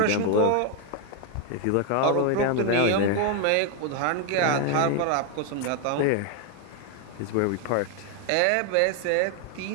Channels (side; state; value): both; different; correlation 0.01